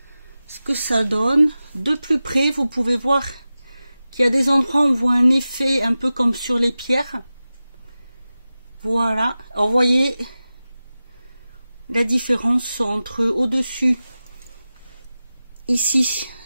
ce que ça donne. De plus près, vous pouvez voir qu'il y a des endroits où on voit un effet un peu comme sur les pierres. Voilà, alors vous voyez la différence entre au-dessus, ici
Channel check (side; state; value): both; inverted; correlation -0.95